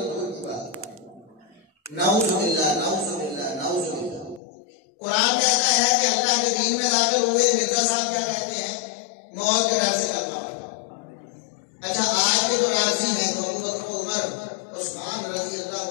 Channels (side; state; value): right; drops out; at 4.4 s